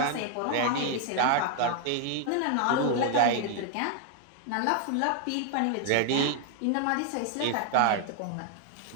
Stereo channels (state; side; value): different; both; correlation 0.00